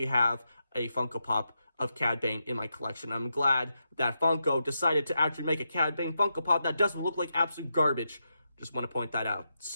have a Funko Pop of Cad Bane in my collection. I'm glad that Funko decided to actually make a Cad Bane Funko Pop that doesn't look like absolute garbage. Just want to point that out.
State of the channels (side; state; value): both; inverted; correlation -0.85